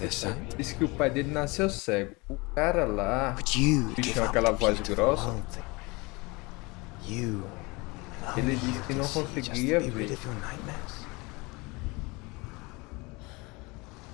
sight? Diz que o pai dele nasceu cego. O cara lá, But you bicho give com up aquela the voz key to the grossa, world thing. You and ele only disse you que can não see just to conseguia be rid ver. of your nightmares.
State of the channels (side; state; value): right; quieter; 25.5 dB